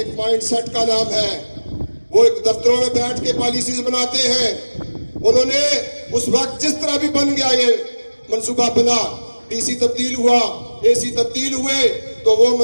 مائنڈ سیٹ کا نام ہے۔ وہ ایک دفتروں میں بیٹھ کے پالیسیز بناتے ہیں۔ انہوں نے اس وقت جس طرح بھی بن گیا یہ منصوبہ بنا، ڈی سی تبدیل ہوا، اے سی تبدیل ہوئے، تو وہ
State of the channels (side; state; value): both; inverted; correlation -1.00